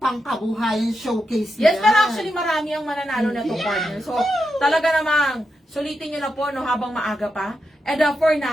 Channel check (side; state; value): both; normal; correlation 0.86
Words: showcase Yes, yan. pero actually marami ang mananalo na to, partner. So, talaga namang sulitin nyo na po habang maaga pa. And for